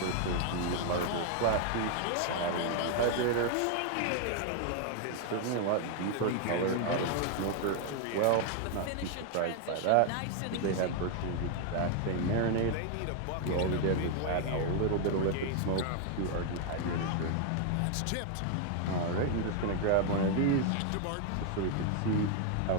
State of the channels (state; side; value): different; both; correlation 0.00